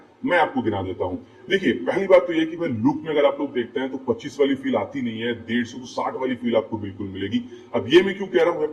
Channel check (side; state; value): both; identical; correlation 1.00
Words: मैं आपको गिना देता हूँ। देखिए, पहली बात तो ये कि भाई लुक में अगर आप लोग देखते हैं तो 25 वाली फील आती नहीं है, 150 तो 60 वाली फील आपको बिल्कुल मिलेगी। अब ये मैं क्यों कह रहा हूँ